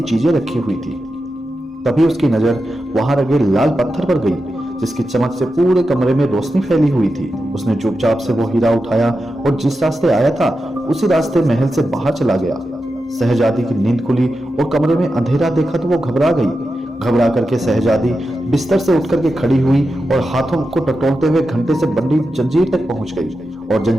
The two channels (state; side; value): normal; both; correlation 0.90